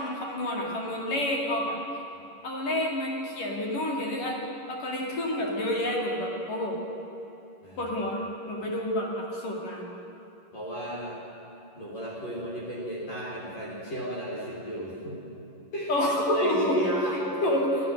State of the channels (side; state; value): right; late; 11 ms